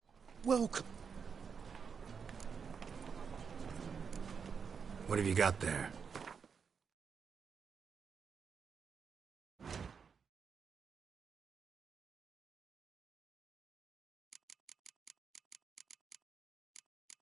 Welcome. What have you got there?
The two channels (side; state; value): left; quieter; 6.2 dB